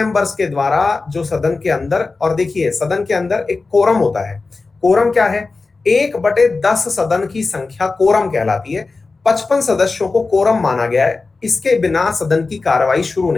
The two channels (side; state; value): right; quieter; 3.9 dB